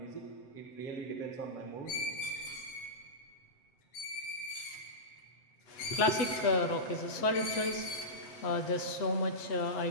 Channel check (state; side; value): late; right; 7.8 ms